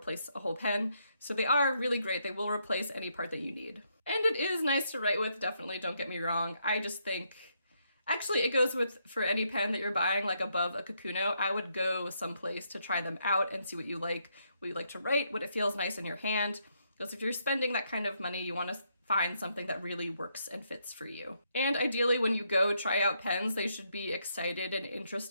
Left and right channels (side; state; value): both; inverted; correlation -0.76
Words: a whole pen. So they are really great. They will replace any part that you need. And it is nice to write with, definitely, don't get me wrong. I just think, actually it goes with, for any pen that you're buying like above a Kakuno, I would go someplace to try them out and see what you like to write, what it feels nice in your hand. Because if you're spending that kind of money, you want to find something that really works and fits for you. And ideally, when you go try out pens, they should be excited and